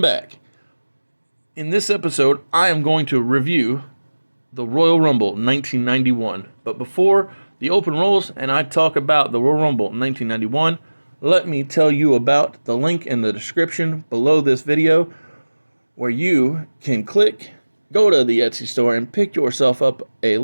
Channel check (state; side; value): inverted; both; correlation -1.00